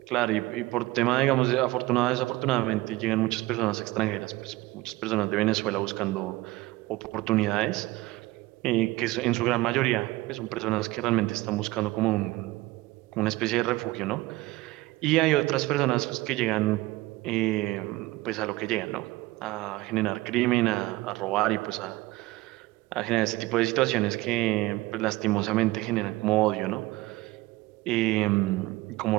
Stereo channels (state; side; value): quieter; left; 19.5 dB